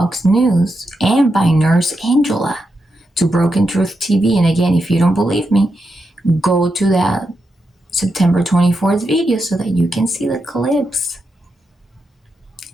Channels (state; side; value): normal; both; correlation 0.86